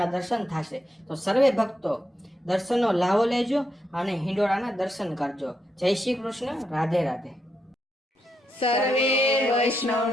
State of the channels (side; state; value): both; normal; correlation 0.82